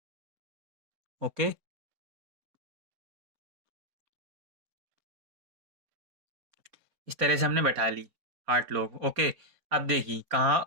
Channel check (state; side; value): late; left; 4.2 ms